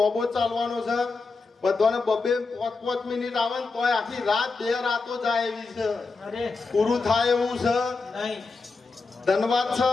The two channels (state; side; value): quieter; right; 4.1 dB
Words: ચાલવાનો છે. બધાને બબે 5 મિનિટ આવે ને તોય આખી રાત 2 રાતો જાય એવી છે. પૂરું થાય એવું છે. ધન્યવાદ છે.